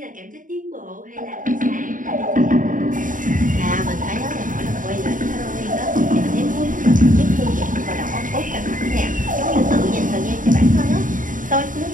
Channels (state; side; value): late; left; 0.38 ms